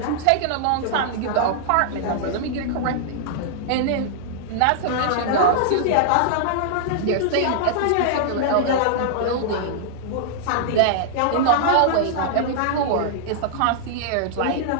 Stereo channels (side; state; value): both; different; correlation -0.01